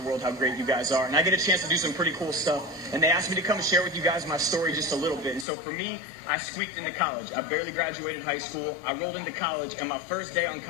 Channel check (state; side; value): drops out; right; at 5.5 s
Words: how great you guys are. And I get a chance to do some pretty cool stuff. And they asked me to come and share with you guys my story just a little bit. And so for me, I squeaked into college. I barely graduated high school. I rolled into college, and my first day on